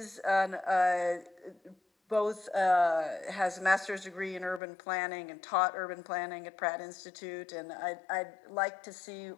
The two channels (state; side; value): drops out; right; at 4.6 s